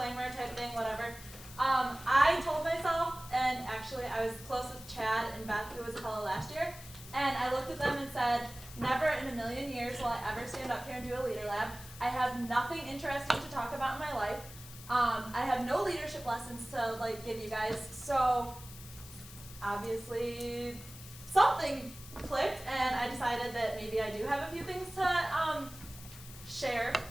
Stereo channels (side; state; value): left; noise; hiss, 16 dB below the sound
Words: type thing, whatever. I told myself, and actually I was close with Chad and Beth, who was a fellow last year, and I looked at them and said, never in a million years will I ever stand up here and do a leader lab. I have nothing interesting to talk about in my life. I have no leadership lessons to give you guys, so obviously something clicked, and I decided that maybe I do have a few things to share.